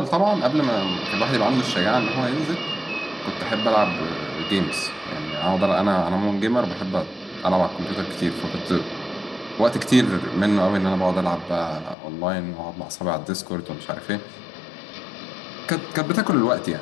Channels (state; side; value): drops out; right; at 12.0 s